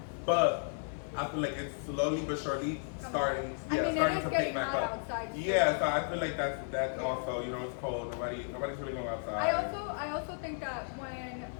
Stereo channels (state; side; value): silent; right; digital silence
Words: But I feel like it's slowly but surely starting to pick back up. Outside, yeah, so I feel like that's also, you know, it's cold. Nobody's really going outside. I also think that when